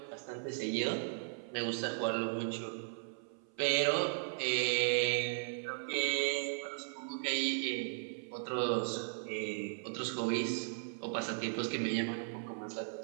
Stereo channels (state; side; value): silent; left; 53 dB below the other